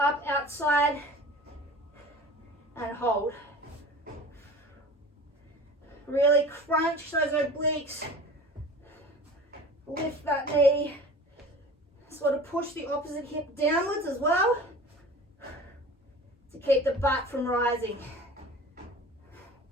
outside and hold. Really crunch those obliques. Lift that knee. Sort of push the opposite hip downwards as well to keep the butt from rising.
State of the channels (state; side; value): normal; both; correlation 0.40